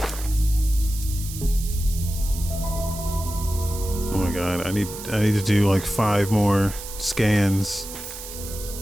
Oh my god, I need to do like 5 more scans.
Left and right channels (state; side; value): noise; right; hiss, 11 dB below the sound